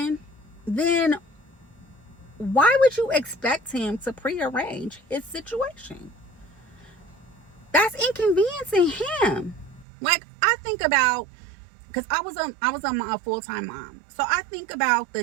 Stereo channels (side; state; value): left; drops out; at 9.9 s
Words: then why would you expect him to prearrange his situation? That's inconveniencing him. Like, I think about, because I was a full-time mom, so I think about